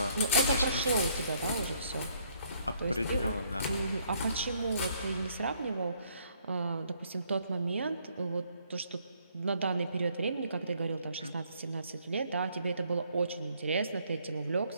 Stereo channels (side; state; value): both; inverted; correlation -0.67